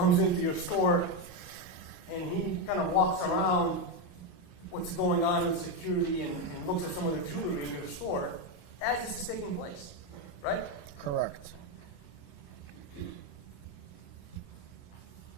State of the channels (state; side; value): late; right; 28 ms